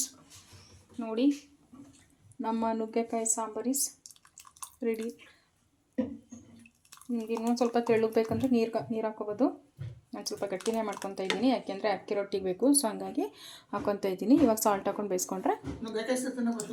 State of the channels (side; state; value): both; identical; correlation 1.00